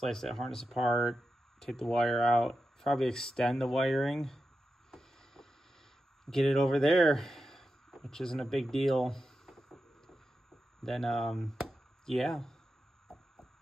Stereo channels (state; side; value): normal; both; correlation 0.90